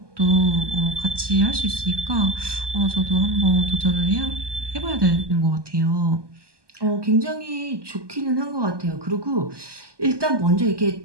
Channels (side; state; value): left; late; 1.2 ms